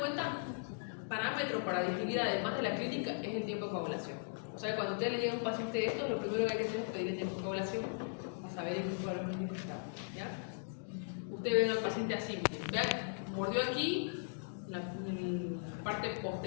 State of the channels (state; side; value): silent; right; digital silence